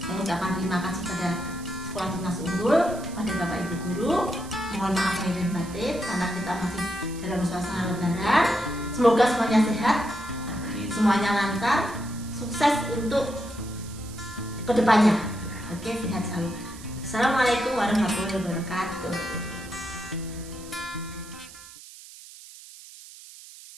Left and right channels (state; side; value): noise; right; hiss, 17 dB below the sound